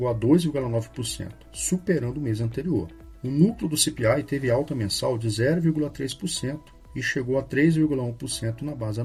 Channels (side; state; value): both; identical; correlation 1.00